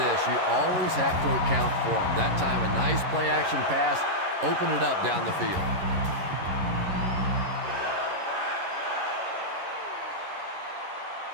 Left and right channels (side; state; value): left; late; 11 ms